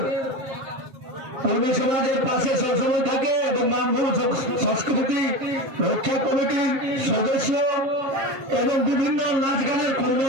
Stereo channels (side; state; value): left; late; 7.5 ms